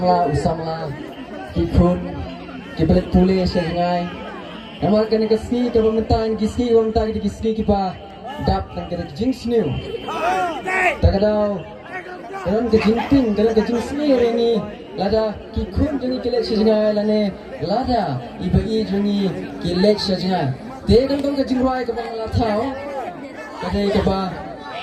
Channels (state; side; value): identical; both; correlation 1.00